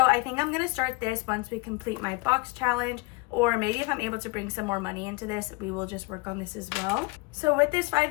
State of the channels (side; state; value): right; quieter; 25.8 dB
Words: I think I'm going to start this once we complete my box challenge, or maybe if I'm able to bring some more money into this, we will just work on this as well. So with this